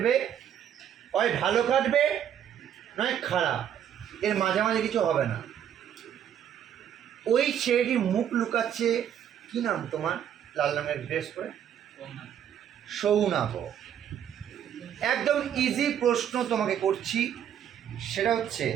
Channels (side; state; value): left; quieter; 9.5 dB